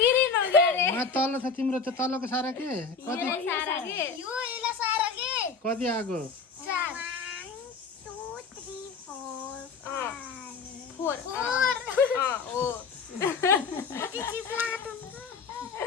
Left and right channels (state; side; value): quieter; right; 5.1 dB